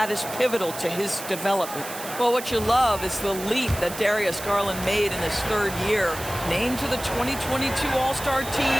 is pivotal to his development. Well, what you love is the leap that Darius Garland made in his 3rd year. Named to the 2022 All-Star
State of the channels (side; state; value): right; noise; hiss, 11 dB below the sound